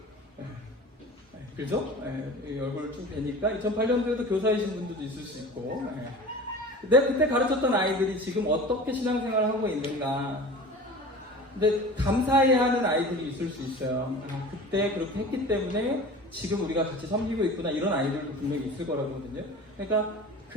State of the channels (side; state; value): both; normal; correlation 0.38